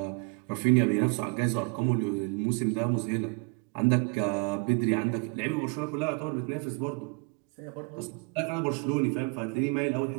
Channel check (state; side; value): quieter; left; 31.8 dB